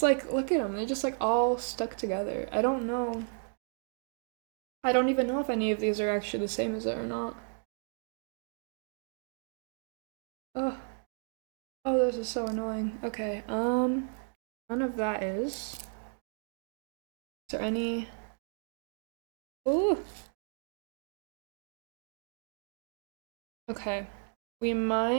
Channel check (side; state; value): left; silent; 55 dB below the other